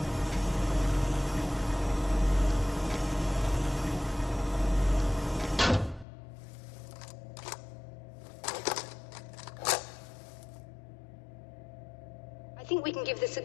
I think we can give this a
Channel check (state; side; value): drops out; right; at 6.1 s